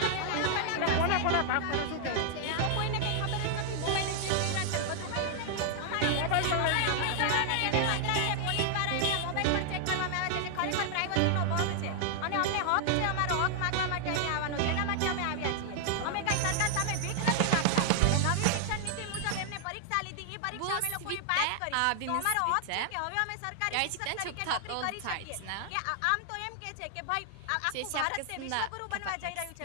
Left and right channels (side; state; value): both; different; correlation 0.00